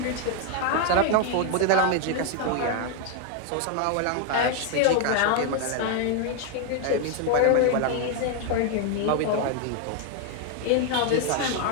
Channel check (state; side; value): different; both; correlation 0.01